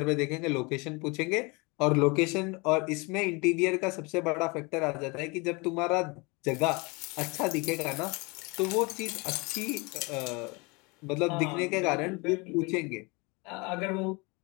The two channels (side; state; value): right; quieter; 27.8 dB